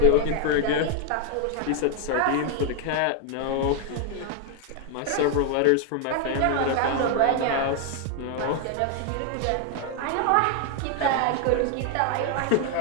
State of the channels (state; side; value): different; both; correlation 0.00